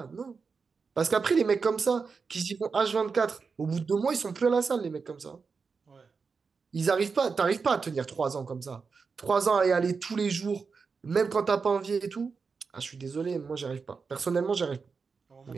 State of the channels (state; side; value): quieter; left; 5.1 dB